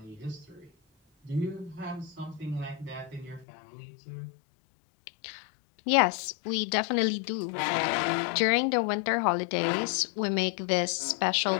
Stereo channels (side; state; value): right; drops out; at 3.5 s